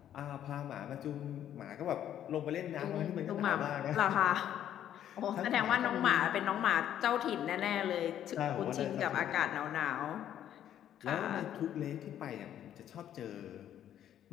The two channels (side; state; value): right; quieter; 10.7 dB